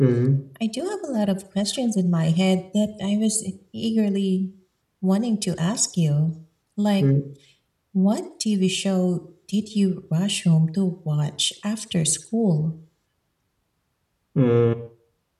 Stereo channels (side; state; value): both; identical; correlation 1.00